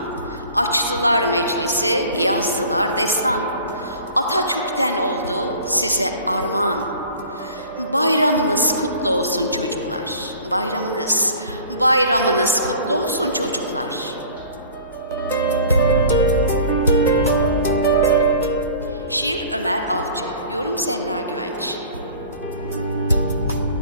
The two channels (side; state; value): both; inverted; correlation -0.46